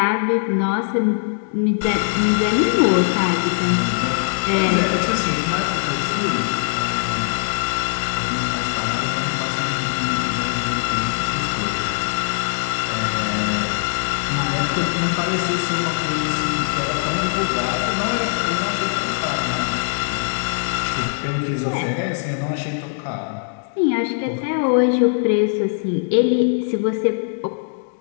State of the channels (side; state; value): right; silent; digital silence